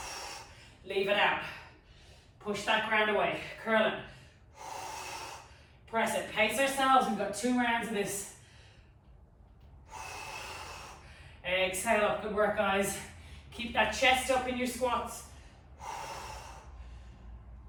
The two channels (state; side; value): identical; both; correlation 1.00